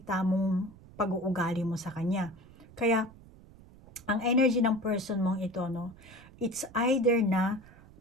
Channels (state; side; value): noise; right; rumble, 22 dB below the sound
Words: mong pag-uugali mo sa kanya. Kaya, ang energy ng person mong ito, no, it's either na